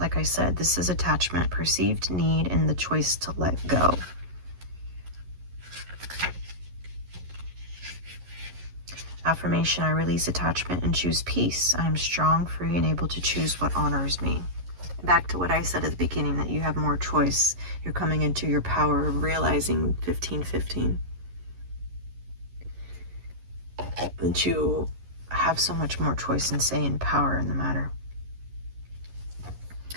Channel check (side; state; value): left; late; 11 ms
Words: I said, this is attachment, perceived need, and the choice to let go. Affirmation, I release attachment and choose peace. I am strong, free, and able to choose what honors me. Back to what I said at the beginning, that you have more choice. You're coming into your power of realizing 1515. That you have so much more choice and say and power in the matter.